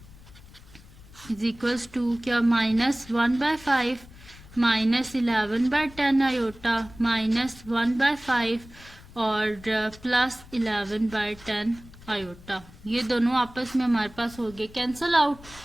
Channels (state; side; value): noise; left; rumble, 21 dB below the sound